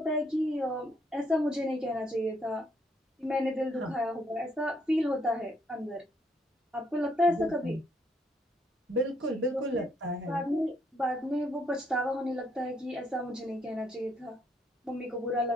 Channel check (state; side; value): normal; both; correlation 0.71